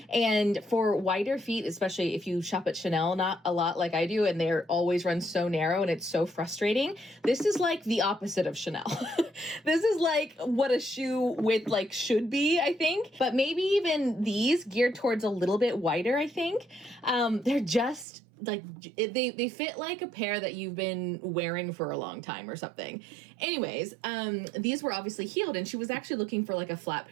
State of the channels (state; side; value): drops out; left; at 18.1 s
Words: And for wider feet, especially if you shop at Chanel not a lot like I do, and they're always run so narrow and it's so frustrating, this is like the opposite of Chanel. This is like what a shoe width like should be, I think. But maybe even these geared towards a little bit wider, I think. They're just like they fit like a pair that you've been wearing for a long time or something. Anyways, these were obviously heeled, and she was actually looking for like a flat